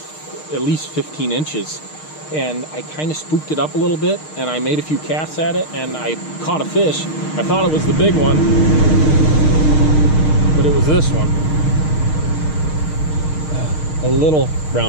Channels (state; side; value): late; right; 6.5 ms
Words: at least 15 inches. And I kind of spooked it up a little bit, and I made a few casts at it, and I caught a fish. I thought it was the big one, but it was this one. A little